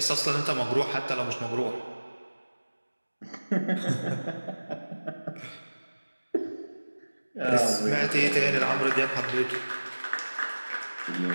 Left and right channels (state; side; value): inverted; both; correlation -1.00